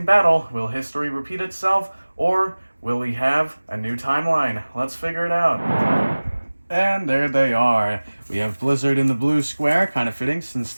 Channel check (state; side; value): inverted; both; correlation -1.00